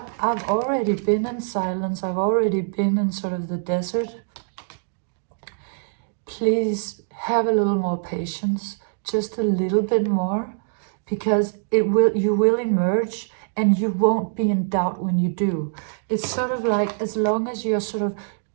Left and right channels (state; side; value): silent; left; digital silence